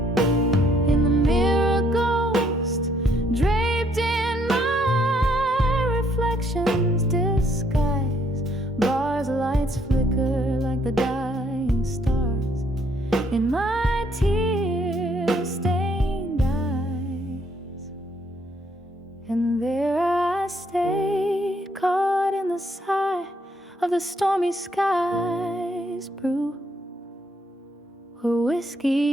In the mirror, ghost draped in my reflection's disguise. Bars, lights flicker like the dying stars in my tear-stained eyes. And there I stay, caught in the sigh of the stormy skies. Brew where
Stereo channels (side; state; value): both; normal; correlation 0.69